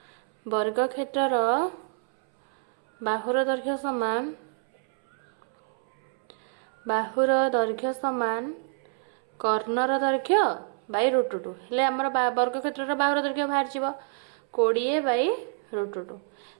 वर्ग क्षेत्रर बाहुर दैर्घ्य समान कर्णर दैर्घ्य बाय √2 हेले हमर वर्ग क्षेत्रर बाहुर दैर्घ्य बाहर जिवो 20 बाय √2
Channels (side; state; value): left; silent; 60 dB below the other